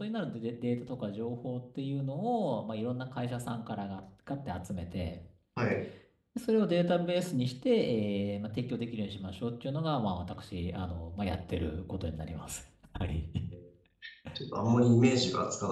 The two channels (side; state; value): both; identical; correlation 1.00